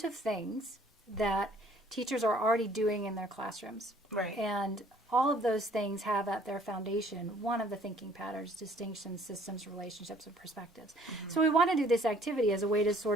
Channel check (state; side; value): normal; both; correlation 0.58